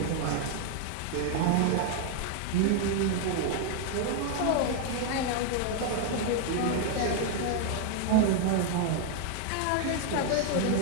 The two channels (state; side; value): different; both; correlation 0.00